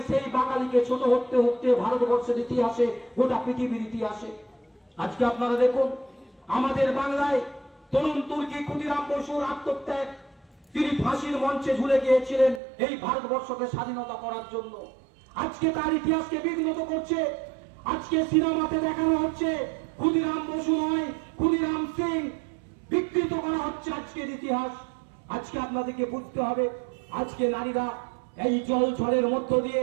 সেই বাঙালিকে ছোট হতে হতে ভারতবর্ষের ইতিহাসে, গোটা পৃথিবীর ইতিহাসে আজকে আপনারা দেখুন, আমাদের বাংলায় তরুণ তুর্কি ক্ষুদিরাম বসুর আত্মত্যাগ, তিনি ফাঁসির মঞ্চে ঝুলে গিয়েছিলেন এই ভারতবর্ষকে স্বাধীনতা করার জন্য। আজকে তার ইতিহাসকে বিঘ্নিত করছে। আজকে সিনেমাতে দেখানো হচ্ছে ক্ষুদিরাম বসু নয়, ক্ষুদিরাম সিং, বিকৃত করা হচ্ছে আজকের ইতিহাস। আজকে আপনাদেরকে বুঝতে হবে, আজকে নারীরা এই জল ঝড়ের মধ্য দিয়ে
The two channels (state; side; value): drops out; left; at 12.6 s